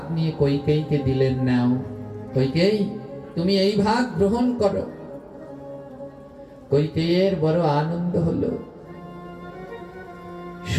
নিয়ে কইকেয়ীকে দিলেন, নাও কইকেয়ী তুমি এই ভাগ গ্রহণ করো। কইকেয়ীর বড় আনন্দ হলো।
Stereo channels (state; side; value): identical; both; correlation 1.00